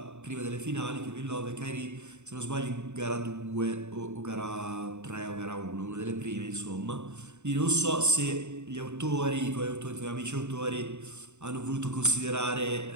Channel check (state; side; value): late; left; 0.83 ms